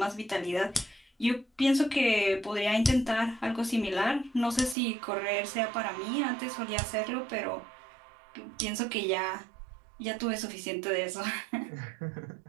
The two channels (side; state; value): left; drops out; at 4.8 s